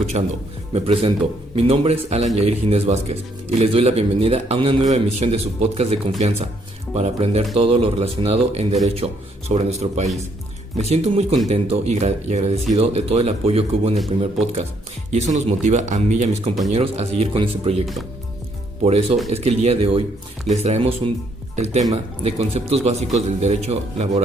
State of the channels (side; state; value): both; normal; correlation 0.70